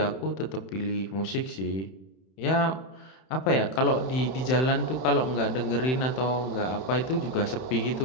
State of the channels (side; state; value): right; late; 31 ms